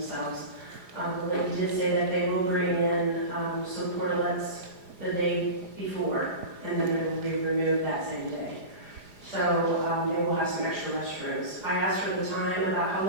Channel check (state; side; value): late; left; 4.9 ms